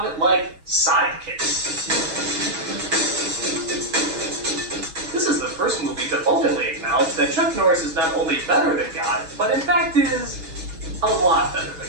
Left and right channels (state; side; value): late; left; 6.2 ms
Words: like sidekicks? This is the first movie to openly acknowledge that Chuck Norris is not only better than God, but in fact is a lot better